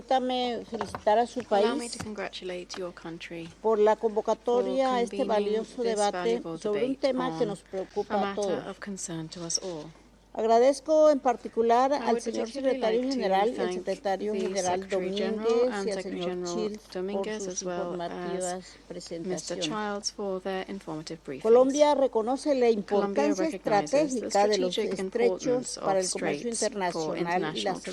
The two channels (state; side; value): identical; both; correlation 1.00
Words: felicitar a su allow me país to congratulate your country por la convocatoria a este convening valioso this debate valuable sobre un debate tema que on nos preocupa a a matter todos. of concern to us all. Agradezco en particular I al would señor particularly secretario like to general, el thank secretario the general Secretary General Domínguez and y al Secretary señor General Childs por Dominguez, sus as well informativas as Mr. presentaciones. Childs for their informative briefings. Colombia reconoce la Colombia importancia recognizes the estratégica de los strategic estrechos importance para of el comercio straits for internacional y la international